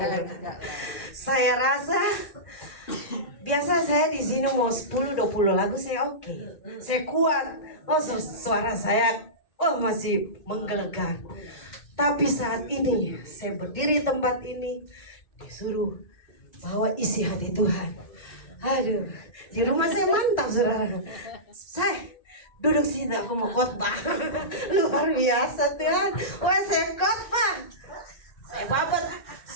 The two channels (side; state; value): right; late; 1.8 ms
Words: Saya rasa biasa saya di sini mau 10-20 lagu saya oke. Saya kuat. Oh, suara saya masih menggelegar. Tapi saat ini saya berdiri di tempat ini disuruh bawa isi hati Tuhan. Aduh, di rumah saya mantap saudara. Saya duduk sini aku mau khotbah. Luar biasa Tuhan. Wah, saya khotbah.